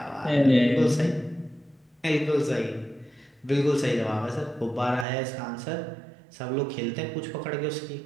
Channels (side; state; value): left; drops out; at 5.1 s